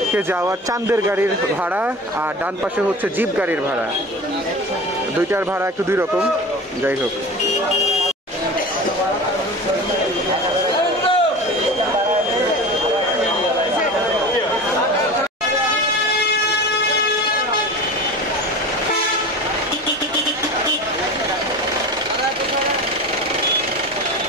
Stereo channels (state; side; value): normal; both; correlation 0.33